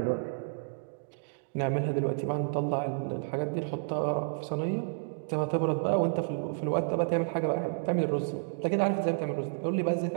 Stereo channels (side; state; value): left; silent; digital silence